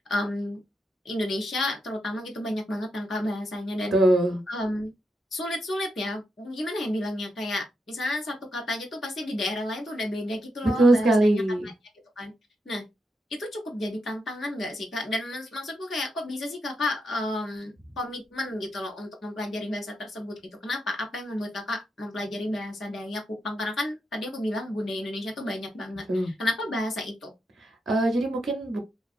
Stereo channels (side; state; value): both; normal; correlation 0.84